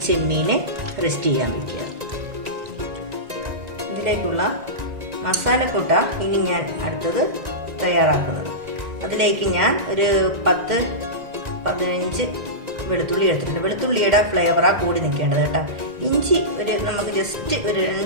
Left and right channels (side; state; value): left; late; 1.9 ms